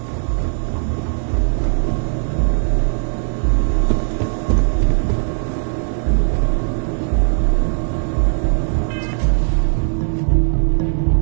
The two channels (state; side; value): silent; left; digital silence